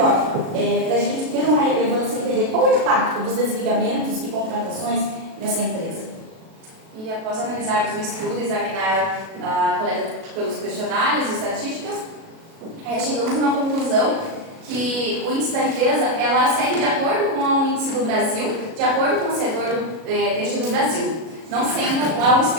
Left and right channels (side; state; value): left; late; 37 ms